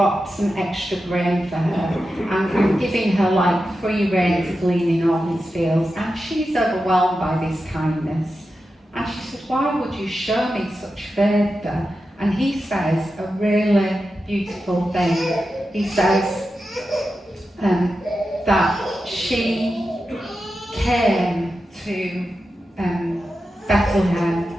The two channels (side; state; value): both; normal; correlation 0.91